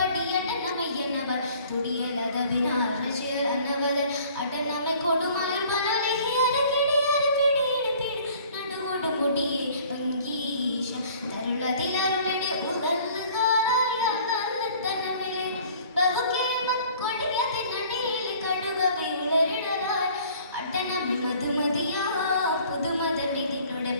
തുടിയലതവിനാൽ റജിയനവർ അടനമെ കൊടുമാർ വനലഹിയര കിടിയര പിടിയിട് പിടി നടുവോട് മുടിയെ ഭംഗീശ തരുളതിലരുളടെ ഉദൽഹാരായ തനമിലെ ബഹുകേമക്കൊടിയതിനടിയിലെ കടുകവയുളരിടലായി അടനമി മധുമതിയാ പുതുമതമിതിനുടെ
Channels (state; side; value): inverted; both; correlation -0.53